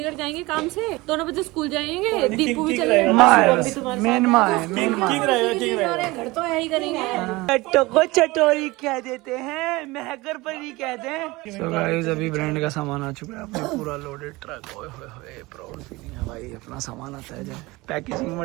जाएंगे काम से, दोनों बच्चे स्कूल जाएंगे, दीपू भी चले जाएंगे। माँ है बस, मेन माँ है, मेन माँ। घर तो यही करेंगे। को चटोरी कह देते हैं, महकर परी कहते हैं। सो गाइस अभी ब्रांड का सामान आ चुका है, अपने पूरा लोडेड ट्रक। ओए होए होए, प्राउड फीलिंग है भाई, अपना सामान आता है जब। Packaging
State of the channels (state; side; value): quieter; left; 21.7 dB